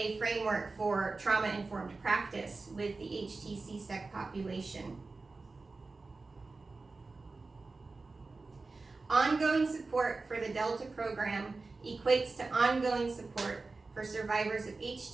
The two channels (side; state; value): left; quieter; 3.7 dB